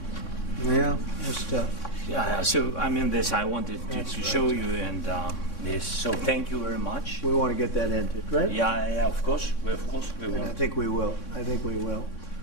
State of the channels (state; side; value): late; right; 3.6 ms